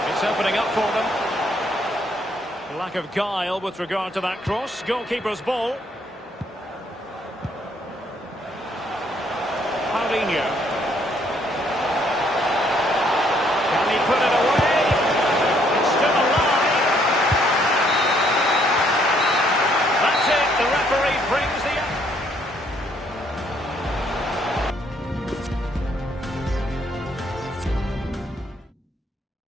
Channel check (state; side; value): normal; both; correlation 0.68